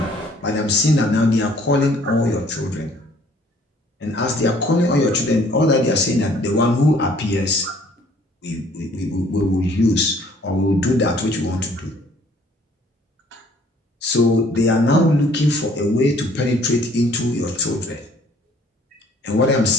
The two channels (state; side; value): normal; both; correlation 0.59